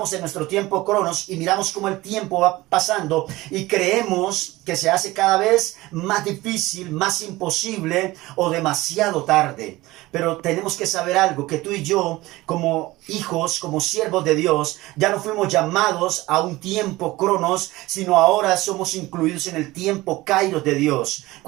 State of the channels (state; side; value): quieter; left; 19.0 dB